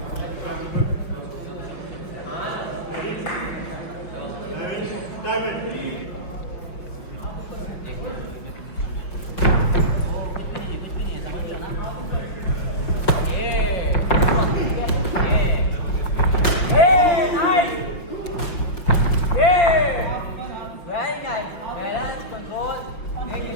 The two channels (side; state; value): right; late; 5.6 ms